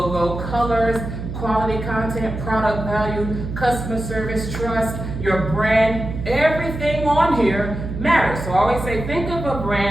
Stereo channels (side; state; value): right; noise; hum, 7 dB below the sound